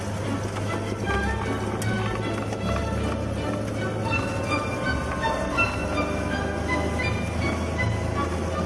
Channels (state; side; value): identical; both; correlation 1.00